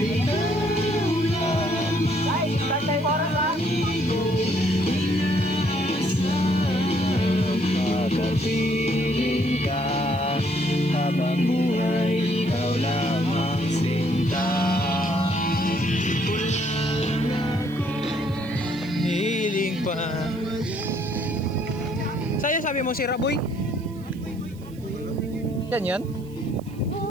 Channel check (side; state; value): right; noise; hiss, 26 dB below the sound